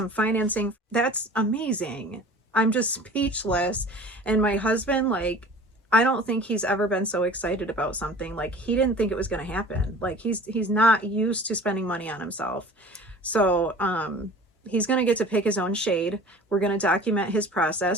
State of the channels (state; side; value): normal; both; correlation 0.43